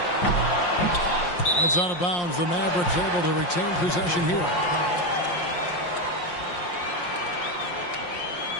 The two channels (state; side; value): late; right; 5.7 ms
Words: It's out of bounds. The Mavericks able to retain possession here.